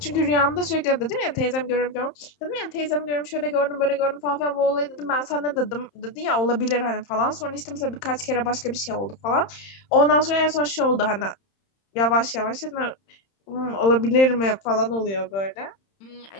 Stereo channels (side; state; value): right; late; 31 ms